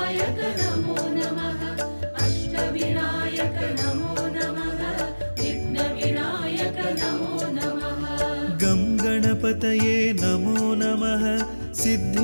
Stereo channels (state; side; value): inverted; both; correlation -1.00